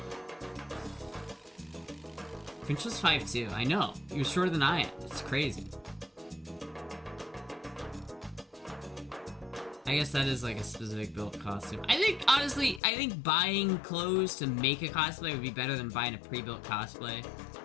Finch was 5'2". I know. He was shorter than I am. It's crazy. I guess that is like a specific built costume. I think, honestly, buying clothes to make a cosplay would be better than buying a pre-built cosplay. If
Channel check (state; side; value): drops out; right; at 12.8 s